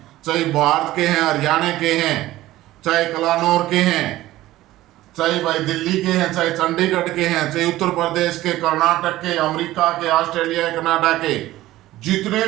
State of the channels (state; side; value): quieter; left; 16.0 dB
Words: चाहे भारत के हैं, हरियाणा के हैं, चाहे कलानौर के हैं, चाहे भाई दिल्ली के हैं, चाहे चंडीगढ़ के हैं, चाहे उत्तर प्रदेश के, कर्नाटक के, अमेरिका के, ऑस्ट्रेलिया, कनाडा के, जितने